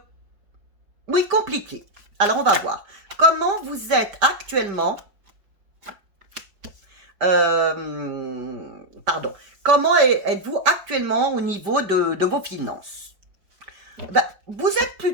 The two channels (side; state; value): left; late; 5.1 ms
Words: Oui, compliquée. Alors, on va voir. Comment vous êtes actuellement... pardon. Comment êtes-vous actuellement au niveau de vos finances? Ben, vous êtes